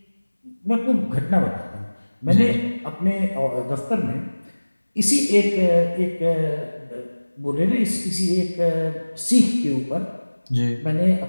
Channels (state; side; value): inverted; both; correlation -1.00